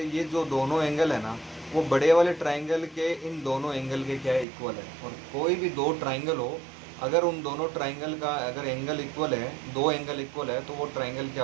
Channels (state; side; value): drops out; left; at 4.5 s